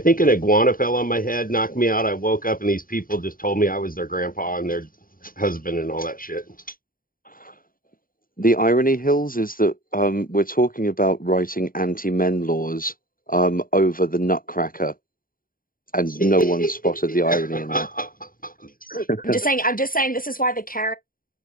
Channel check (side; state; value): right; late; 0.41 ms